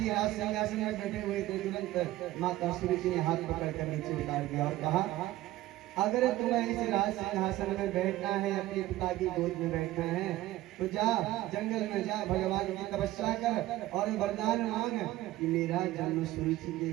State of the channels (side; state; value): left; quieter; 16.1 dB